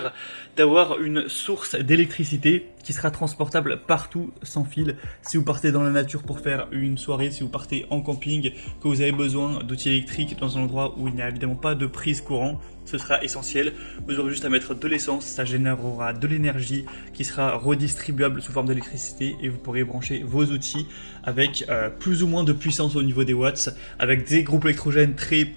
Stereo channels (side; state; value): both; inverted; correlation -1.00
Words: d'avoir une source d'électricité qui sera transportable partout sans fil. Si vous partez dans la nature pour faire une soirée, si vous partez en camping, que vous avez besoin d'outils électriques dans un endroit où il n'y a évidemment pas de prise courant, ce sera essentiel. Vous aurez juste à mettre de l'essence, ça générera de l'énergie qui sera redistribuable sous forme d'électricité et vous pourrez brancher vos outils avec plus ou moins de puissance au niveau des watts. Avec des groupes électrogènes très